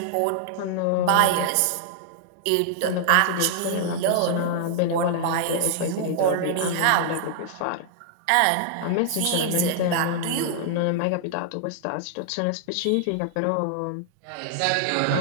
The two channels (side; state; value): both; different; correlation -0.01